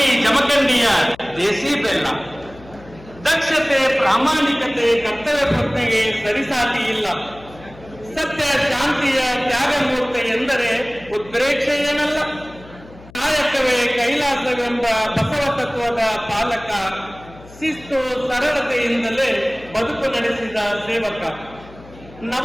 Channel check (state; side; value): noise; left; hum, 21 dB below the sound